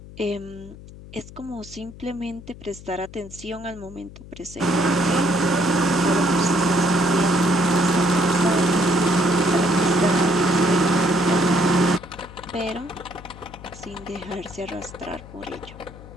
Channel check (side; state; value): left; noise; hum, 17 dB below the sound